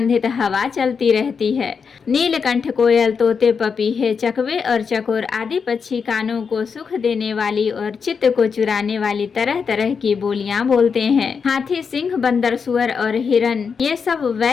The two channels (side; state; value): right; quieter; 5.9 dB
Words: हवा चलती रहती है। नीलकंठ, कोयल, तोते, पपीहे, चकवे और चकोर आदि पक्षी कानों को सुख देने वाली और चित्त को चुराने वाली तरह तरह की बोलियां बोलते हैं। हाथी, सिंह, बंदर, सुअर और हिरन ये सब